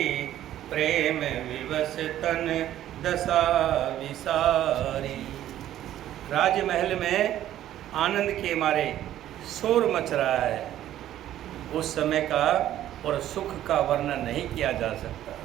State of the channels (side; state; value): left; quieter; 12.4 dB